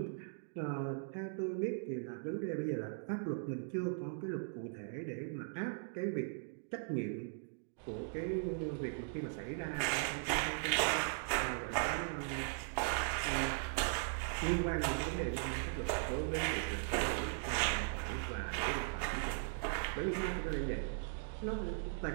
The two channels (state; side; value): silent; left; digital silence